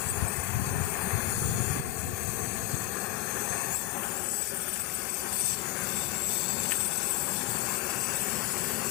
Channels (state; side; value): quieter; right; 15.5 dB